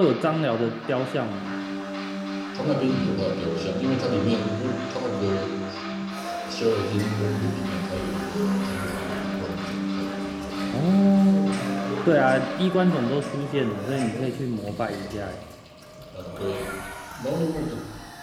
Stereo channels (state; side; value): identical; both; correlation 1.00